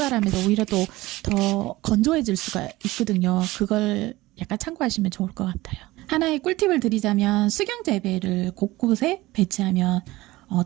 오히려 또 더 건조해질 수가 있거든요. 그걸 약간 참고하시면 좋을 것 같아요. 하나의 꿀팁을 드리자면 수경재배를 곳곳에 배치하면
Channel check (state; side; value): quieter; left; 18.9 dB